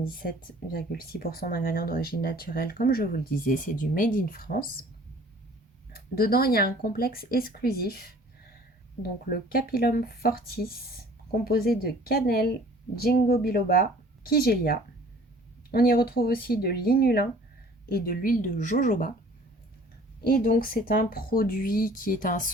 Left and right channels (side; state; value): both; normal; correlation 0.51